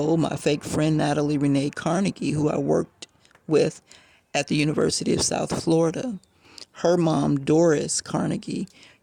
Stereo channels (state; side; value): identical; both; correlation 1.00